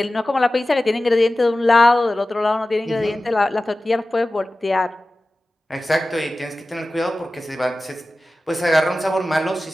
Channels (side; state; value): both; normal; correlation 0.96